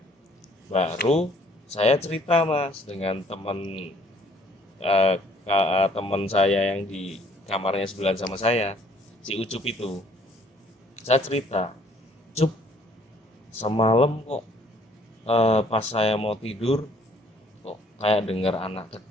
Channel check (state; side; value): normal; both; correlation 0.60